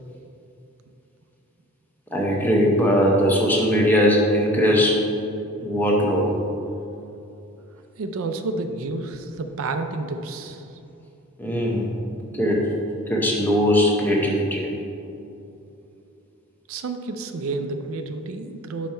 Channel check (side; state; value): both; normal; correlation 0.45